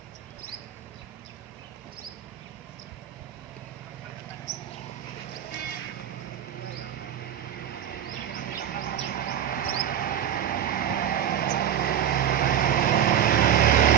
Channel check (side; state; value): left; quieter; 9.7 dB